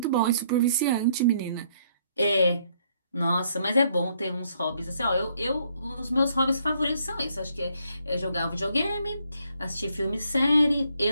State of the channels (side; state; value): both; inverted; correlation -0.69